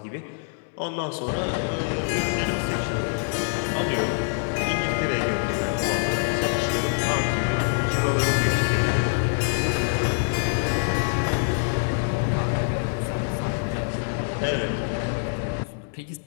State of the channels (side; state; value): right; silent; digital silence